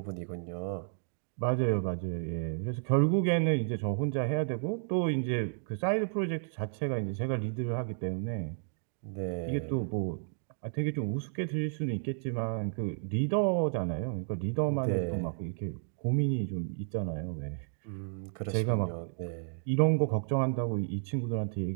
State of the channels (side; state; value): left; silent; digital silence